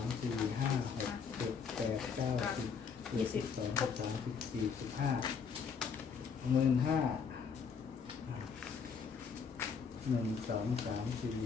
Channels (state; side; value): quieter; right; 6.1 dB